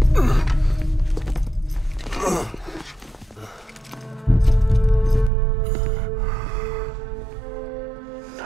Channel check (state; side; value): drops out; left; at 5.3 s